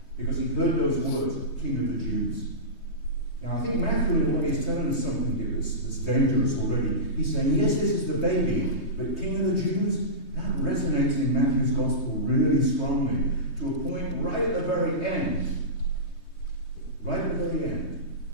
Because he heard those words, King of the Jews. Now I think Matthew in a way is telling us something here that's dangerous already. He's saying, yes, this is the baby, but King of the Jews, that resonates in Matthew's Gospel really strongly, to a point right at the very end. Right at the very end,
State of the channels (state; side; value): late; right; 3.2 ms